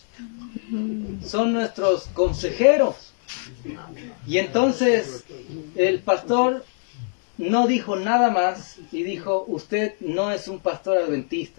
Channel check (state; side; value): silent; right; 63 dB below the other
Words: son nuestros consejeros. Y entonces el pastor no dijo nada más y dijo, usted no es un pastor